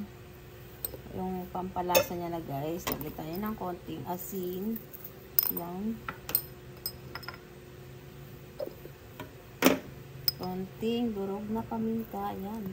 yung pampalasa niya na guys. Lagay tayo ng konting asin. Yan. Konting durog na paminta.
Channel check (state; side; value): identical; both; correlation 1.00